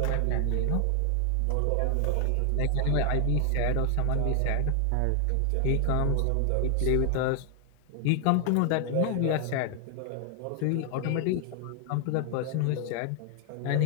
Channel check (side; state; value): both; different; correlation 0.00